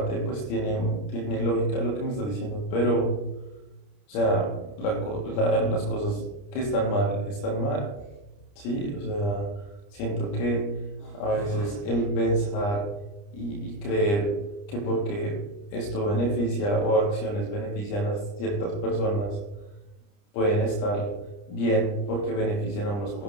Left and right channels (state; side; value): late; right; 30 ms